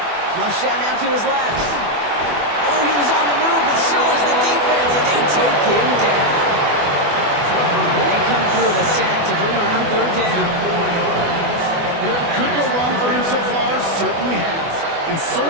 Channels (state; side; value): late; left; 24 ms